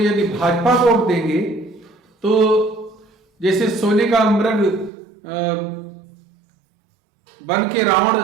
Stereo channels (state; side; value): drops out; left; at 4.9 s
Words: भाजपा को वोट देंगे तो जैसे सोने का मृग बन के रावण